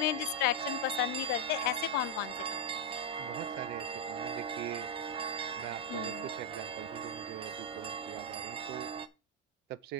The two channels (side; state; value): both; normal; correlation -0.02